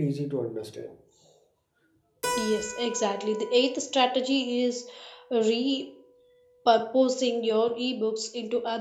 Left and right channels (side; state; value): both; identical; correlation 1.00